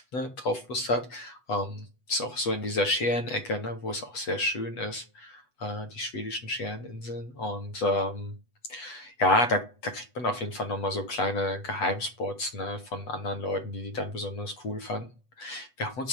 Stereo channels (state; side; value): late; right; 8.1 ms